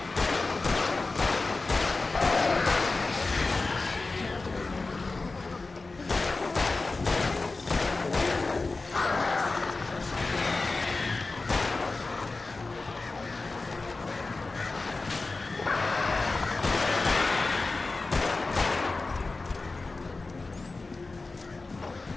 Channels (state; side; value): quieter; right; 3.6 dB